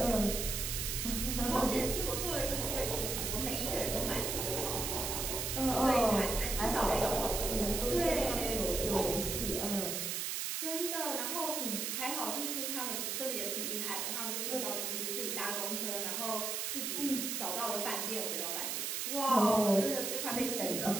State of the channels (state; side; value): noise; right; hiss, 1 dB below the sound